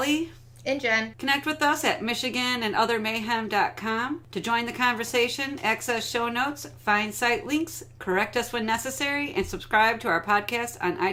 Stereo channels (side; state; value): both; identical; correlation 1.00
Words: and Jenn. Connect with us at michiganandothermayhem.com to join the conversation, access show notes, find site links, correct us when necessary, and subscribe to our podcast on